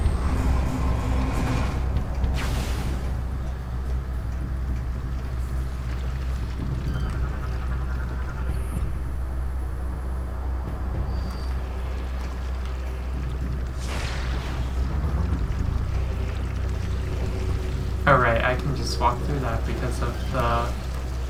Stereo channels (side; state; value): both; identical; correlation 1.00